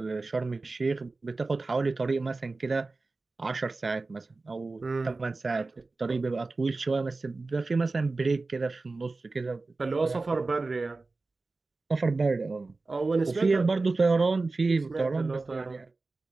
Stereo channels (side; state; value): left; quieter; 3.6 dB